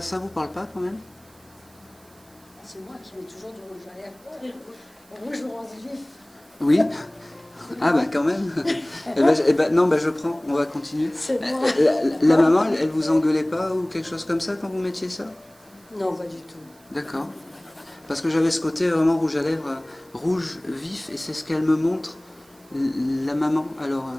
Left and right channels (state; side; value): noise; right; hiss, 29 dB below the sound